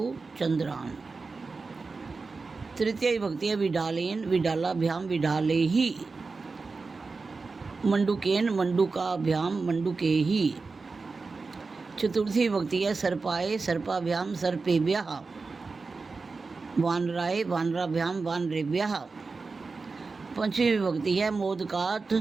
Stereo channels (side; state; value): left; quieter; 4.2 dB